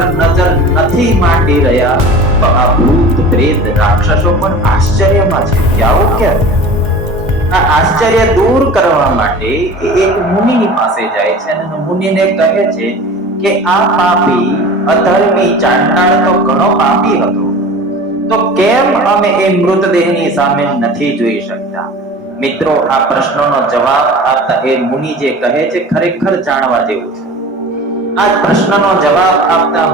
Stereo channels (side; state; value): left; late; 1.3 ms